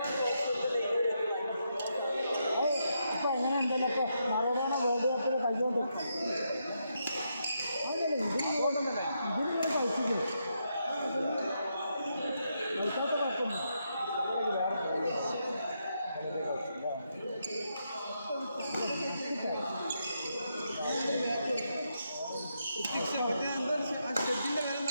ഇപ്പം എങ്ങനെ ഉണ്ടല്ലോ ഇപ്പോൾ മറഡോണ വേൾഡ് കപ്പിൽ കൈകൊണ്ട് അതല്ലേ ഇതിന് കഴിച്ചില്ലേ കഴിക്കാത്ത കുഴപ്പമില്ല.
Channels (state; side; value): inverted; both; correlation -0.81